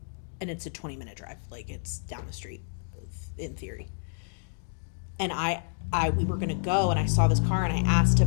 And it's a 20-minute drive. Like, it's down the street, in theory. And we were gonna go, and I saw this car, and I asked to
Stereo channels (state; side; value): silent; right; digital silence